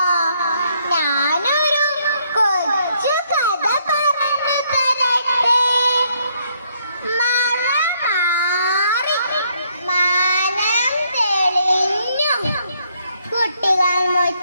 ഞാനൊരു കൊച്ചു കഥ പറഞ്ഞു തരട്ടെ. മഴ മാറി മാനം തെളിഞ്ഞു, കുട്ടികൾ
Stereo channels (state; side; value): inverted; both; correlation -0.71